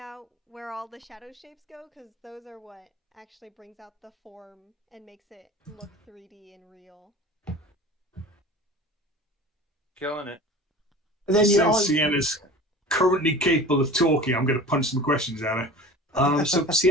where all the shadow shapes go, because those are what actually brings out the form and makes it look 3D and real. Killing it. And then you Since Sienna's currently capable of talking, I'm going to punch some questions at her. So,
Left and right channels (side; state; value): both; normal; correlation 0.38